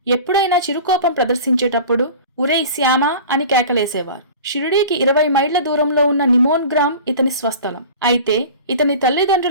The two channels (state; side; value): inverted; both; correlation -0.38